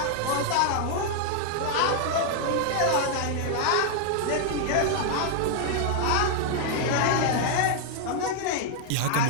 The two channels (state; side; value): different; both; correlation 0.00